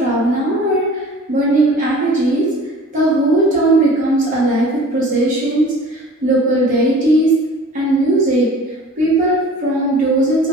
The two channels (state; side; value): normal; both; correlation 0.45